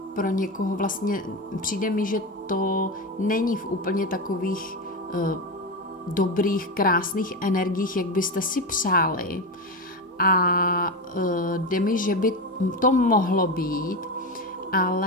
pro někoho vlastně přijde mi, že to není v úplně takových dobrých, krásných energiích, jak byste si přáli, a jde mi, že by to mohlo být,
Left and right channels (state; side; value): normal; both; correlation 0.17